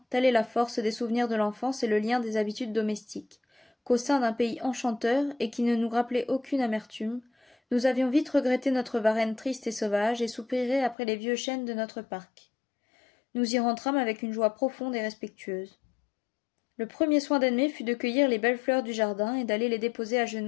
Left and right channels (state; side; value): drops out; right; at 11.0 s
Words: telle est la force des souvenirs de l'enfance et le lien des habitudes domestiques, qu'au sein d'un pays enchanteur et qui ne nous rappelait aucune amertume, nous avions vite regretté notre Varennes triste et sauvage et soupiré après les vieux chênes de notre parc. Nous y rentrâmes avec une joie profonde et respectueuse. Le premier soin d'Edmé fut de cueillir les belles fleurs du jardin et d'aller les déposer à